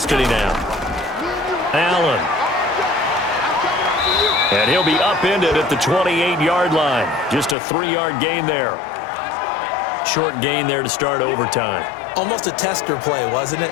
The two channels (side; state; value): right; drops out; at 7.6 s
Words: now. Allen. And he'll be upended at the 28-yard line. Just a 3-yard gain there. Short gain there to start overtime. Almost a tester play, wasn't it?